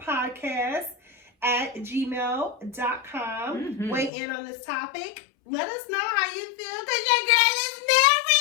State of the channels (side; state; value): right; drops out; at 4.1 s